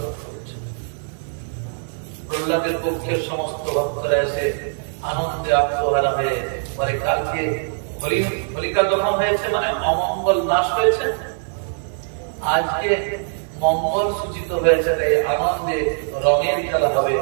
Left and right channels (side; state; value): left; silent; digital silence